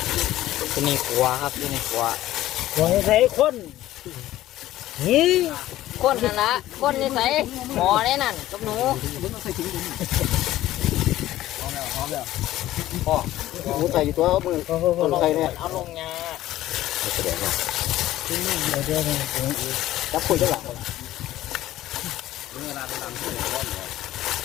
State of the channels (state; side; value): quieter; right; 14.6 dB